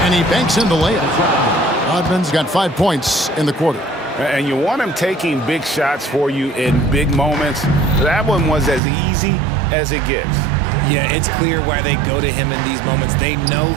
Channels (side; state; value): left; drops out; at 8.8 s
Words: and he banks in the layup. Rodman's got 5 points in the quarter. And you want him taking big shots for you in big moments. That one was as easy as it gets. Yeah, it's clear why they go to him in these moments. They know